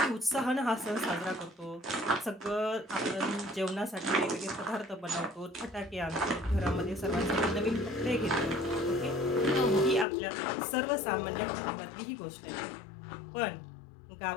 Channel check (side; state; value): right; drops out; at 10.1 s